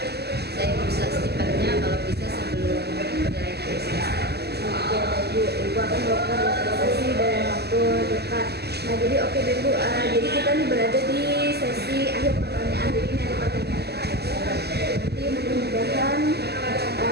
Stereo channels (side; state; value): left; late; 0.47 ms